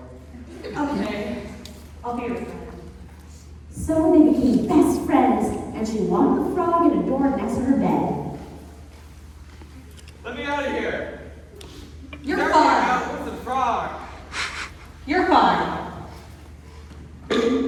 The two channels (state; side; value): identical; both; correlation 1.00